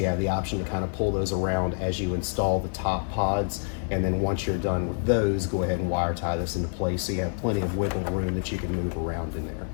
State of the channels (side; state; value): right; silent; digital silence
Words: have the option to kind of pull those around as you install the top pods. And then once you're done with those, go ahead and wire tie this into place so you have plenty of wiggle room that you can move around in there.